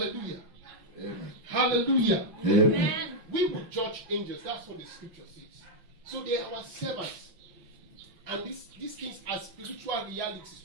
Amen. Hallelujah. Amen. We will judge angels. That's what the scripture says. So they are our servants. And these things are spiritual realities.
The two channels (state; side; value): late; left; 5.9 ms